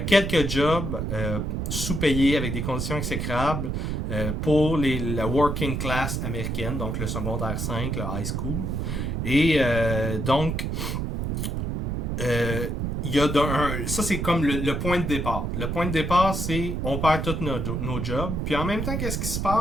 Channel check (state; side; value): noise; right; rumble, 1 dB below the sound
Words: quelques jobs sous-payés avec des conditions exécrables pour la working class américaine, donc le secondaire 5, le high school. Et donc, il y a ça c'est comme le point de départ. Le point de départ, c'est on perd tous nos jobs. Puis en même temps, qu'est-ce qui se